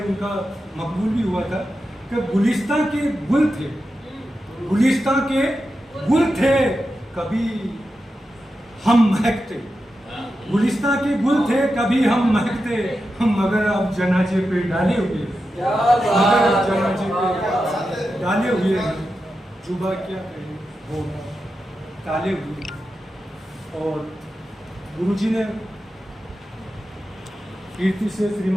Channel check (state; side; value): normal; both; correlation 0.90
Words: उनका मकबूल भी हुआ था कि गुलिस्तां के गुल थे, गुलिस्तां के गुल थे, कभी हम महकते, गुलिस्तां के गुल थे कभी हम महकते। हम मगर अब जनाजे पे डाले हुए, मगर जनाजे पे डाले हुए हैं। जुबा क्या कहे वो ताले हुए। और गुरुजी ने कीर्ति से